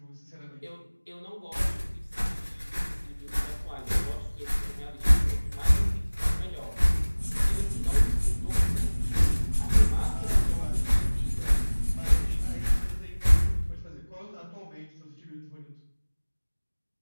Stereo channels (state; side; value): inverted; both; correlation -1.00